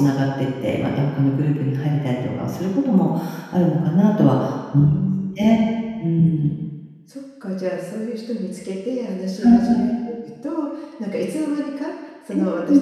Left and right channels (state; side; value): identical; both; correlation 1.00